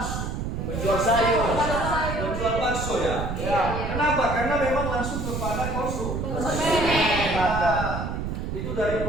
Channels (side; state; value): right; noise; rumble, 3 dB below the sound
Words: Penjual sayur, Penjual bakso ya? Kenapa? Karena memang langsung kepada konsumen. Itu dari